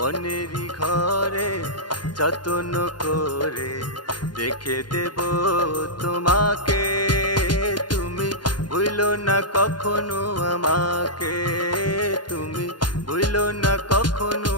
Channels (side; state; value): right; late; 0.71 ms